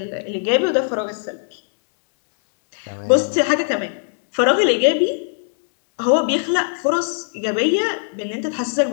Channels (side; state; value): right; silent; digital silence